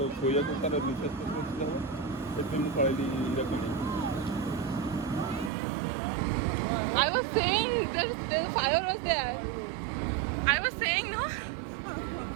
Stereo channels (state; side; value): drops out; left; at 5.5 s